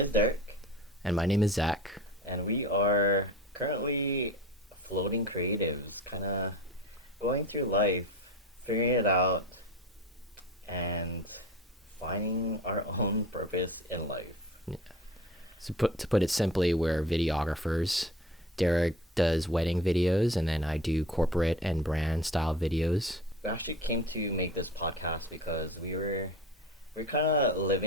Derek, And my name is Zach. and we are currently floating creatives, kind of going through life, figuring it out, and finding our own purpose in life. So to put it simply, we're videographers. Derek does wedding videos, and then I do corporate and brand style videos. We actually came to make this podcast because we're kind of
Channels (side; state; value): both; normal; correlation 0.36